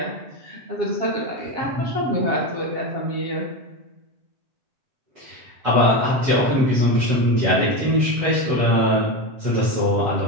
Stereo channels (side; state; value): left; late; 7.4 ms